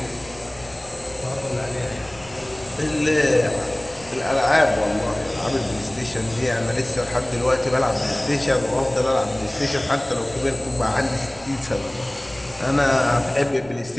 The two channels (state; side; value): noise; right; rumble, 22 dB below the sound